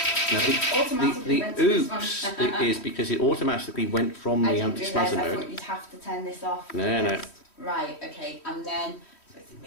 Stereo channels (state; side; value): late; right; 3.1 ms